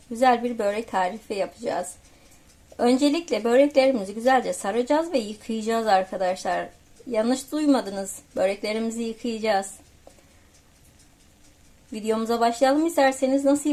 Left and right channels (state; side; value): identical; both; correlation 1.00